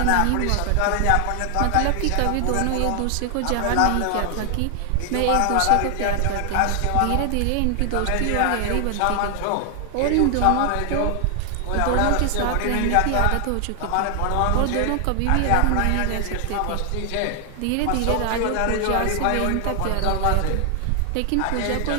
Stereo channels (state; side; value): different; both; correlation 0.00